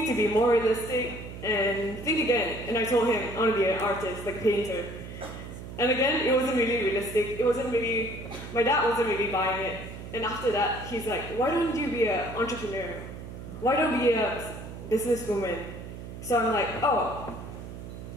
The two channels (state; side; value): noise; right; hum, 11 dB below the sound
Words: to be more realistic and think again. And I told him I want to be an artist, like a painter. And again, it wasn't really realistic. My dad wasn't really buying it. And after that, he's like, why don't you be an entrepreneur? Why don't you be a businesswoman? So I'm like, oh,